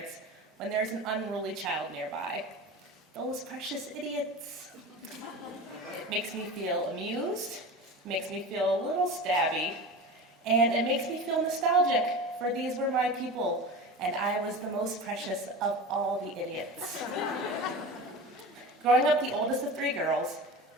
when there's an unruly child nearby. Those precious idiots. It makes me feel amused, makes me feel a little stabby, and it makes me feel nostalgic, for these were my people, and I was the most precious of all the idiots. Growing up the oldest of 3 girls,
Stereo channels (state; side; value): normal; both; correlation 0.30